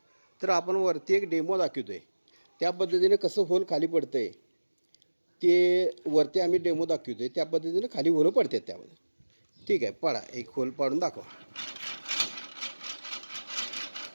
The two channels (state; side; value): inverted; both; correlation -1.00